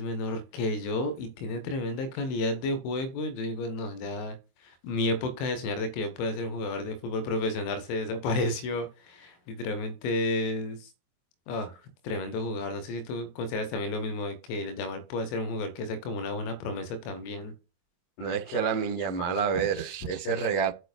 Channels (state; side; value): late; right; 23 ms